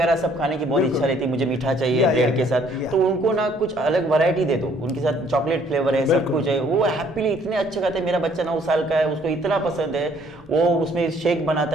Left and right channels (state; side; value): noise; left; hum, 28 dB below the sound